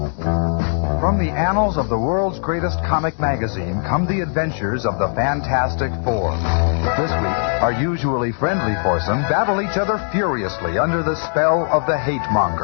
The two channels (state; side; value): silent; right; digital silence